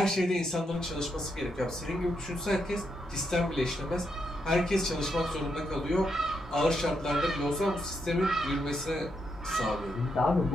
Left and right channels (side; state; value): both; normal; correlation 0.81